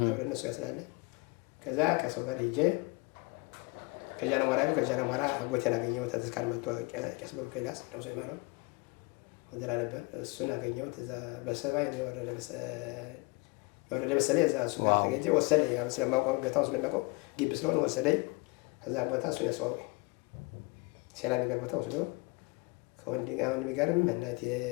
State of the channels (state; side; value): quieter; right; 27.7 dB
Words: አብረን እነሱ ጋር ስላለ። ከዛ ከሰው ጋር ሄጄ ከጃናሞራ አጎቴን አገኘሁት። ተስካር መጥቶ ቄስ ብሩክ ኤልያስ ነፍሱ ይማረው ወደላ ነበር። እሱን አገኘሁት። እዛ በሰባይ ነው የወረደ መሰለኝ። እዛ እሱ ጋር ተገኘ ወሰደኝ። ስለማውቀው ቦታውን ስለሚያውቀው ግቢ ስለሆነ ወሰደኝ። ከዛ ቦታ እሱን ያስተዋወቀኝ። ሴላ የሚባል ቦታ ወስዶ ከወንድም ጋርም እናቴ